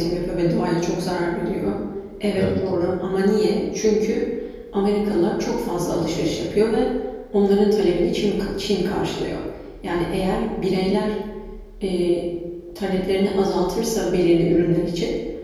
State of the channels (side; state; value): both; identical; correlation 1.00